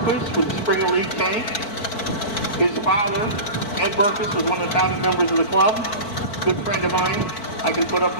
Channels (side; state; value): right; late; 4.5 ms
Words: with a Springer Leaf tank. His father, Ed Berkowitz, was one of the founding members of the club. Good friend of mine. I can put up